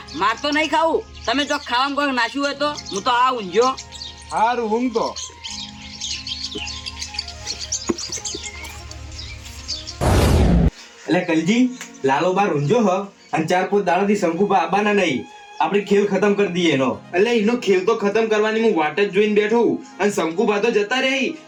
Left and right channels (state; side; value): identical; both; correlation 1.00